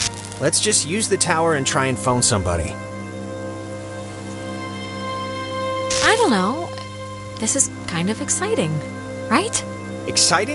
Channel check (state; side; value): identical; both; correlation 1.00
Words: Let's just use the tower and try and phone somebody. I don't know. This is kind of exciting, right?